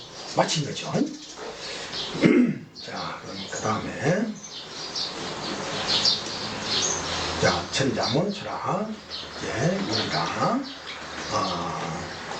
마친 거죠. 자, 그럼 그 다음에 자, 천자문 철학 입니다.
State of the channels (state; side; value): identical; both; correlation 1.00